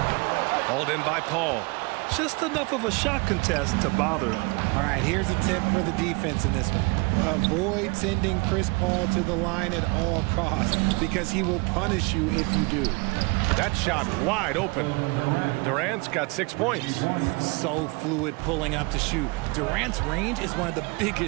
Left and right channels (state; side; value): quieter; left; 28.7 dB